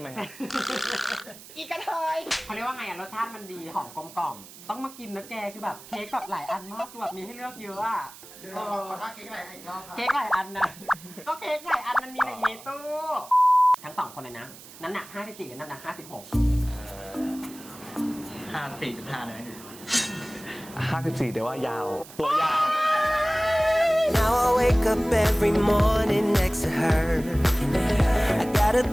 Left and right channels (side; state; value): right; noise; hiss, 18 dB below the sound